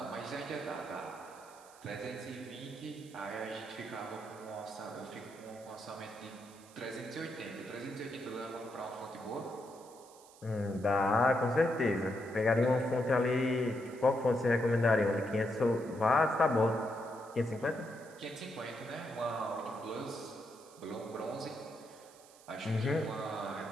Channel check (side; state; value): right; noise; hiss, 23 dB below the sound